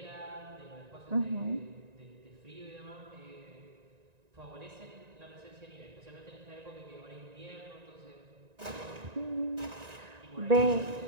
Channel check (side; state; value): left; late; 1.9 ms